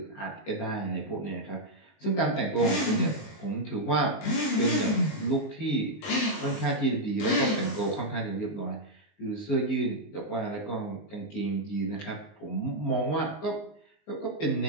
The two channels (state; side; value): late; right; 19 ms